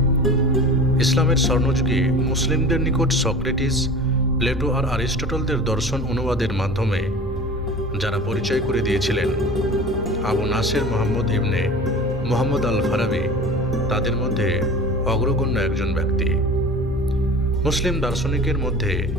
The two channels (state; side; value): normal; both; correlation 0.37